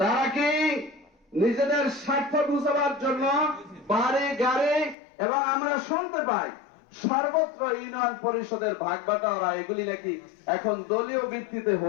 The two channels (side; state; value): right; drops out; at 5.0 s